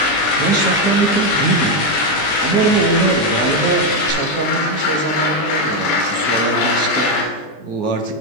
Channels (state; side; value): late; right; 20 ms